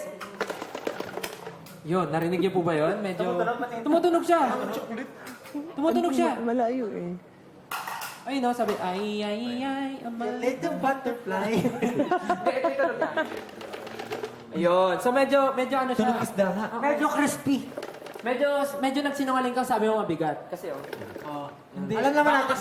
Yun, narinig niyo po ba yun? Medyo... Tumutunog siya. Tumutunog siya. Malayo eh. Ay, no, sabi, ay, a little butterfly. Ito na. Ayun. So, medyo ano siya. Tunog isda nga. Medyo crispy. Medyo nagsinungaling kang sabi mo mabigat. Kasi, Alam naman natin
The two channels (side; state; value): both; identical; correlation 1.00